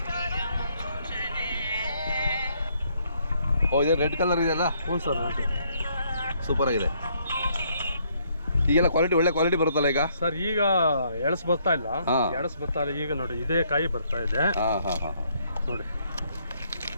ಓ ಇದು ರೆಡ್ ಕಲರ್ ಇದೆಯಲ್ಲ? ಹ್ಞೂ ಸರ್. ಸೂಪರ್ ಆಗಿದೆ. ಈಗೆಲ್ಲ ಕ್ವಾಲಿಟಿ ಒಳ್ಳೆ ಕ್ವಾಲಿಟಿ ಬರುತ್ತಲ್ಲ ಈಗ? ಸರ್ ಈಗ ಎಳಸ್ ಬರ್ತಾ ಇಲ್ಲ, ಈಗ ನೋಡಿ ಇದೇ ಕಾಯಿ ಬರ್ತಾ ಇದೆ. ನೋಡಿ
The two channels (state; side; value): inverted; both; correlation -0.70